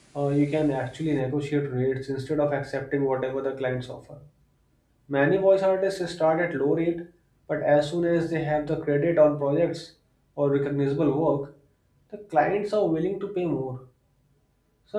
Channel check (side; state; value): both; identical; correlation 1.00